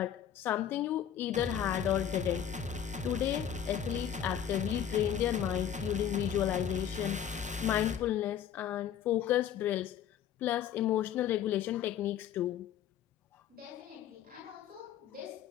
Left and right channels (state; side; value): quieter; right; 9.5 dB